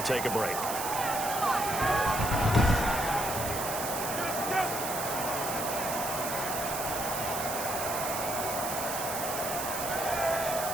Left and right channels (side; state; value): right; noise; hiss, 5 dB below the sound